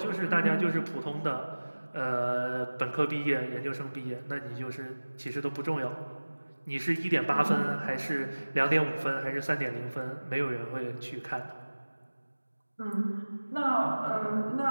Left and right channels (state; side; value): inverted; both; correlation -1.00